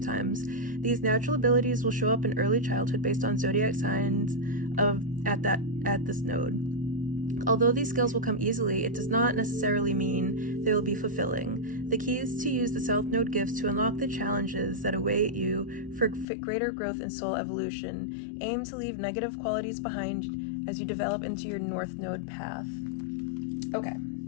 These natural abilities will show up in early childhood based on zodiac signs at this node. Although these skills will come easily, it does not necessarily mean they will be fulfilling. The key is to use the South Node gifts to unlock the challenges that await you for greater growth and soul evolution. Aim to leave negative qualities behind as you develop into your North Node path. Okay,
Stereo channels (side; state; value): right; drops out; at 16.2 s